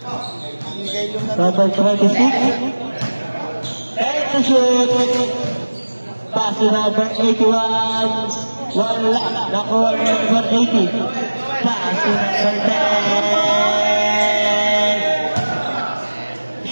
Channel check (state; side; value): inverted; both; correlation -1.00